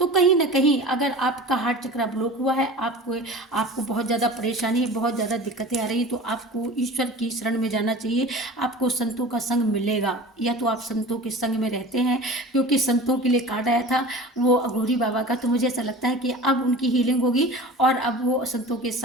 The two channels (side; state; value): both; normal; correlation 0.37